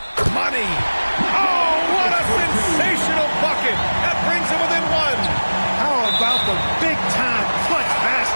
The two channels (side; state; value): both; inverted; correlation -1.00